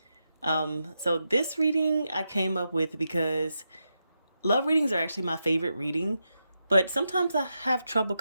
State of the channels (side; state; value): both; inverted; correlation -0.87